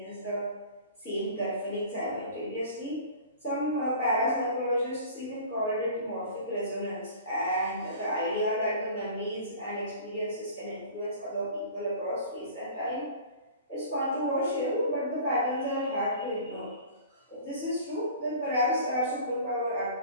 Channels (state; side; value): inverted; both; correlation -0.42